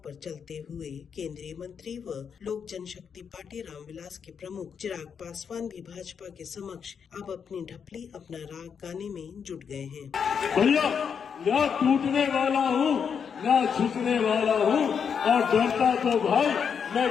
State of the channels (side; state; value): right; quieter; 6.9 dB